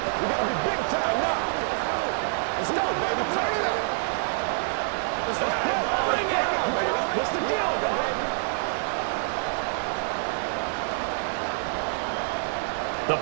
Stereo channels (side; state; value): left; silent; digital silence